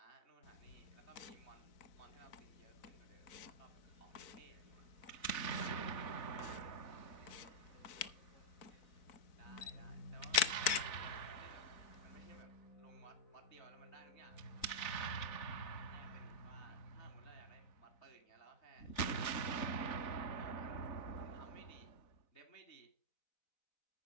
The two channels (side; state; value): right; late; 4.0 ms